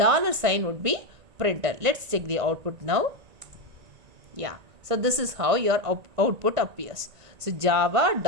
sign would be printed. Let's check the output now. Yeah, so this is how your output appears. So Java,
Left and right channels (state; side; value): late; left; 1.9 ms